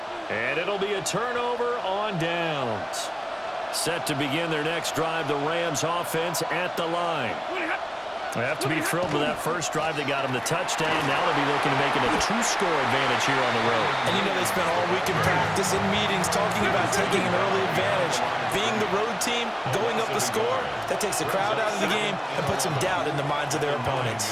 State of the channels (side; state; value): both; identical; correlation 1.00